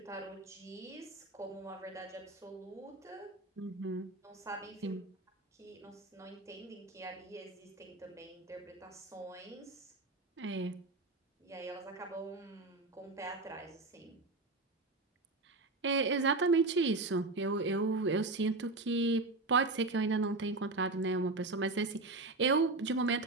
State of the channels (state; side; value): quieter; left; 3.2 dB